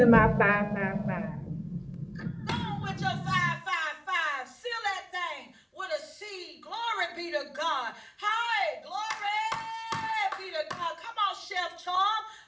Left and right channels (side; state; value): both; identical; correlation 1.00